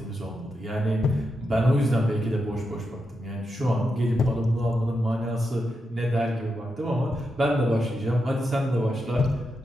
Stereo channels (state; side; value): normal; both; correlation 0.86